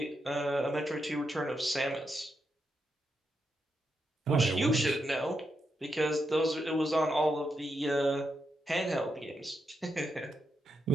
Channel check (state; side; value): normal; both; correlation 0.84